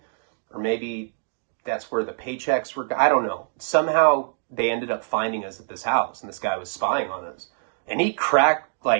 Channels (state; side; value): silent; left; digital silence